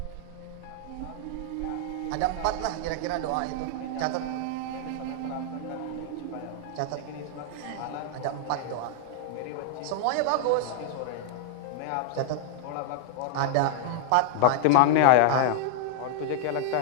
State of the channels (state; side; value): different; both; correlation -0.01